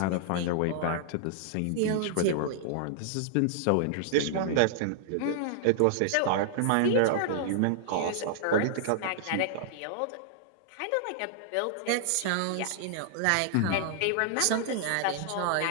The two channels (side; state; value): both; different; correlation -0.01